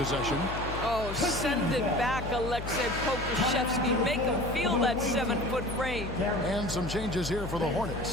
Oh, send it back, Aleksej Pokusevski. Make him feel that 7-foot frame. And some changes here for the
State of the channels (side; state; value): left; noise; hum, 7 dB below the sound